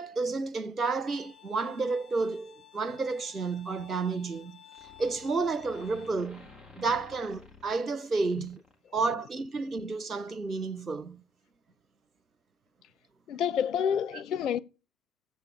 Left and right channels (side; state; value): both; normal; correlation 0.72